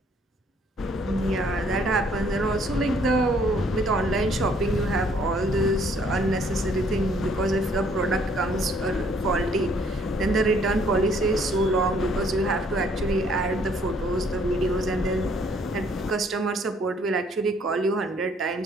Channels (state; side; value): normal; both; correlation 0.63